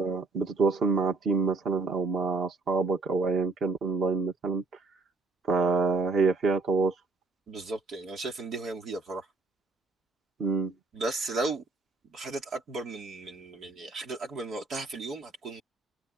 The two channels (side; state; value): left; quieter; 3.7 dB